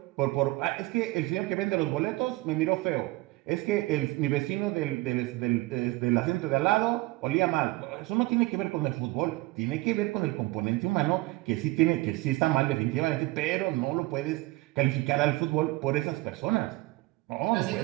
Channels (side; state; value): left; quieter; 20.5 dB